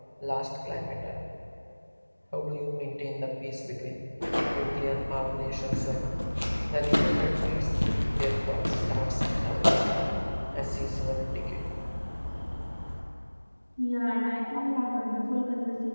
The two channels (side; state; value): both; inverted; correlation -1.00